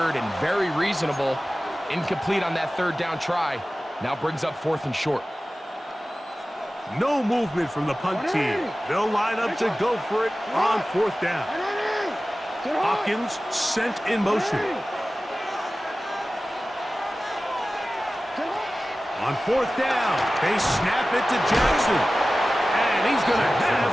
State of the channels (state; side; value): normal; both; correlation 0.96